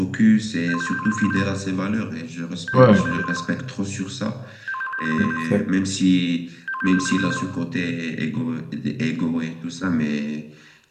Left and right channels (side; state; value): both; identical; correlation 1.00